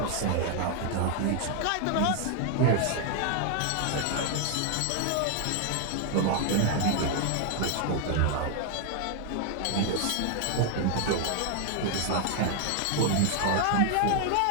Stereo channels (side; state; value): both; different; correlation 0.00